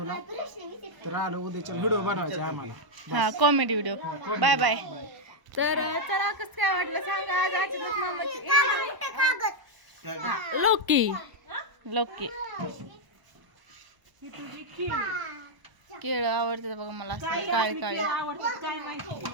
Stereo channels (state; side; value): late; left; 1.0 ms